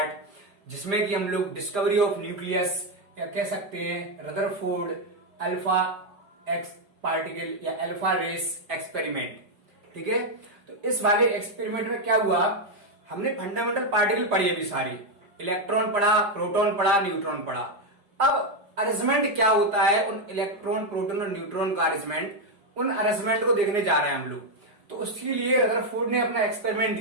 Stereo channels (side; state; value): left; late; 5.0 ms